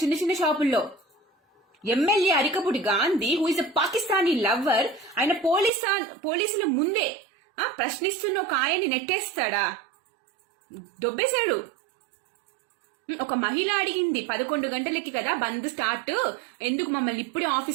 చిన్న చిన్న షాపుల్లో. MLA Arikapudi Gandhi, who is a Pakistani lover, ఆయన పోలీసుల ముందే ప్రశ్నిస్తున్న ఒక ఆయన్ని నెట్టేస్తాడా? దొబ్బేశాడు. ఒక మహిళ అడిగింది 11 గంటలకి కదా బంద్ స్టార్ట్, ఎందుకు మమ్మల్ని ఇప్పుడే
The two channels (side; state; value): left; drops out; at 5.7 s